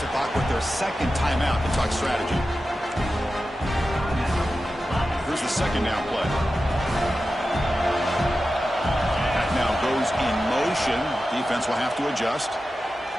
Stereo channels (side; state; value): both; normal; correlation 0.93